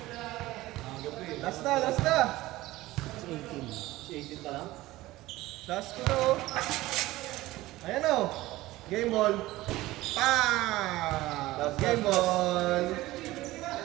Last na! Si 18 pa lang. Last ko na oh. Ayan oh. Game ball. Pa! Game ball.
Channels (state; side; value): quieter; left; 17.7 dB